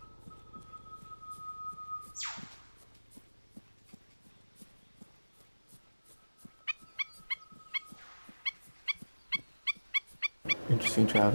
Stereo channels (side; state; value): both; inverted; correlation -1.00